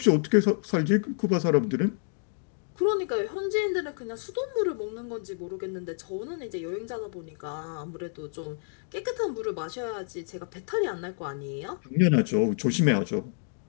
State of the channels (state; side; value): silent; right; 59 dB below the other